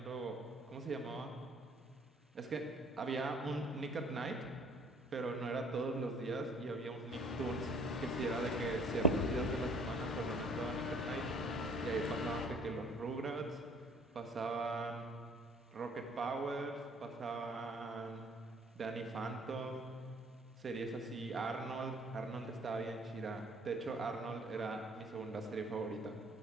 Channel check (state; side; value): normal; both; correlation 0.55